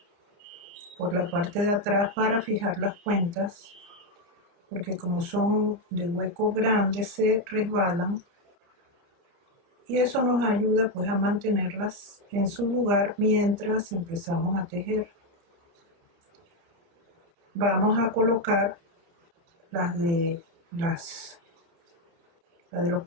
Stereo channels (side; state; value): left; late; 29 ms